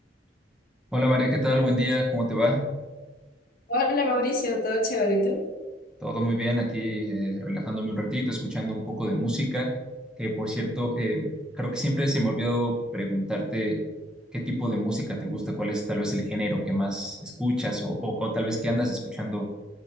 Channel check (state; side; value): normal; both; correlation 0.66